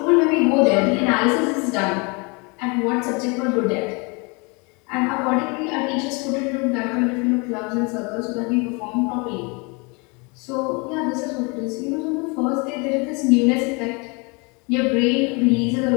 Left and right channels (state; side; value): quieter; right; 30.4 dB